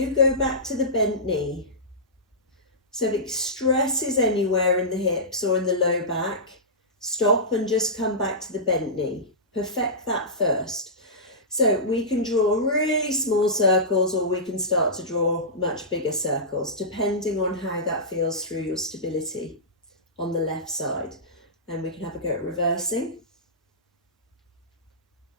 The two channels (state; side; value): normal; both; correlation -0.17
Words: go back to the bent knee. So if it stresses anywhere in the hips or in the low back, stop and just come back to the bent knee. Perfect that first. So we can draw really small circles, or we can start to draw much bigger circles, depending on how that feels through your stability on the left side. And we can have a go at reversing.